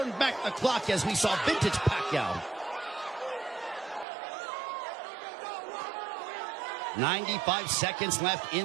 back the clock as we saw vintage Pacquiao. 95 seconds left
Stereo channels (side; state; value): left; drops out; at 4.0 s